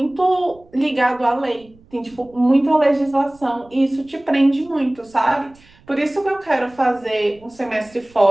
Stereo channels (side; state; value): right; noise; rumble, 28 dB below the sound